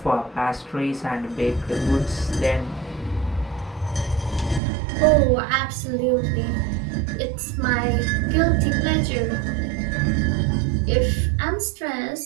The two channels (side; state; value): left; drops out; at 4.6 s